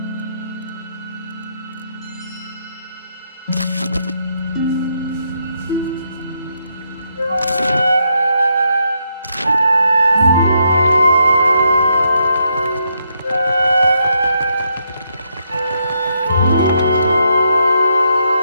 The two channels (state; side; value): inverted; both; correlation -0.78